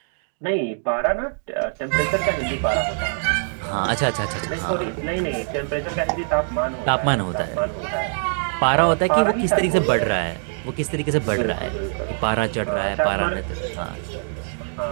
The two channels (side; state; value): left; silent; digital silence